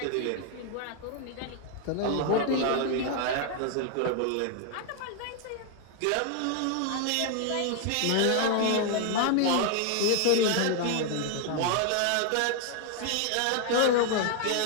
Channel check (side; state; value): both; different; correlation 0.00